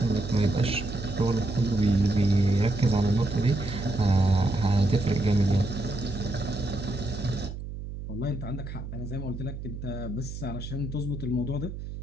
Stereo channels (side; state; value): right; noise; hum, 9 dB below the sound